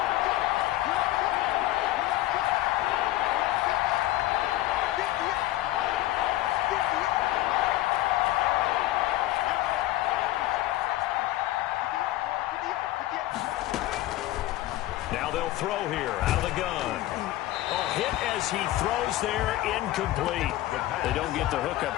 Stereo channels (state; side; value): quieter; right; 15.9 dB